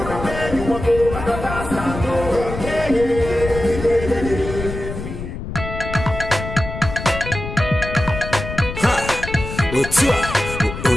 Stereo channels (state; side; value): noise; left; rumble, 8 dB below the sound